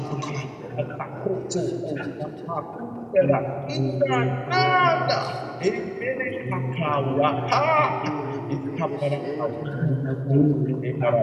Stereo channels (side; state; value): both; identical; correlation 1.00